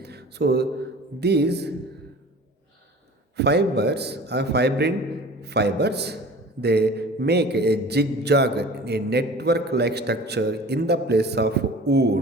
So these fibers are fibrin fibers. They make a zigzag, a network like structure in the place of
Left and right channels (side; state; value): both; normal; correlation 0.42